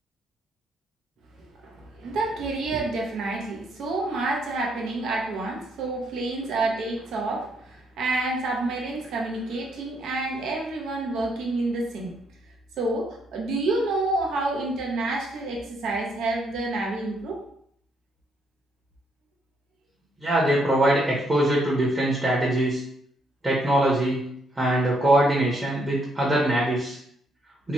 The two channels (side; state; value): both; normal; correlation 0.73